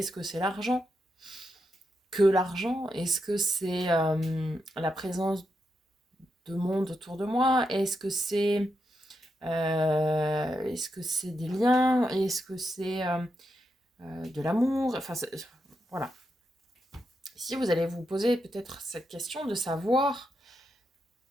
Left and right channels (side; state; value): both; normal; correlation 0.84